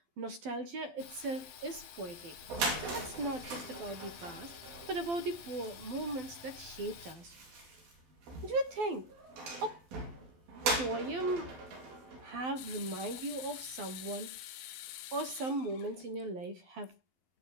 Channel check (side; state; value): left; late; 12 ms